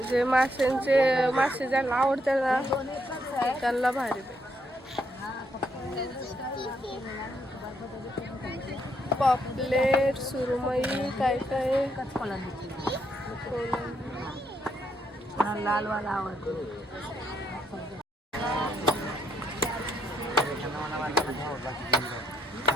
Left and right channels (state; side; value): normal; both; correlation 0.75